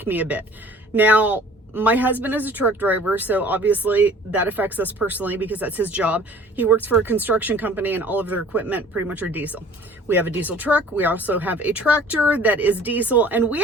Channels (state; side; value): normal; both; correlation 0.49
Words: me a bit. Now, my husband is a truck driver, so obviously that affects us personally because that's his job. He works for a construction company and all of their equipment pretty much are diesel. We have a diesel truck. We also have a tractor that is diesel, and we